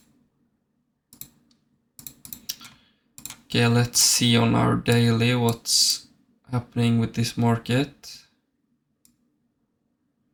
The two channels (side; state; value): both; identical; correlation 1.00